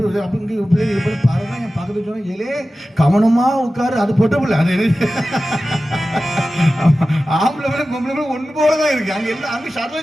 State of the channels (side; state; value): both; normal; correlation 0.95